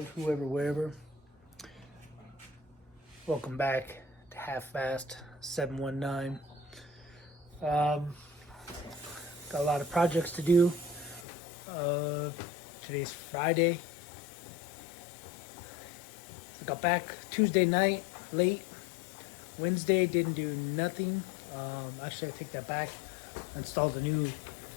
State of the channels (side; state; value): right; drops out; at 11.2 s